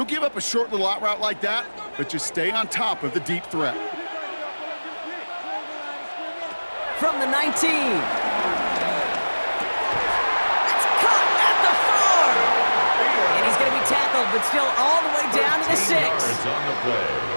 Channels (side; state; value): both; inverted; correlation -1.00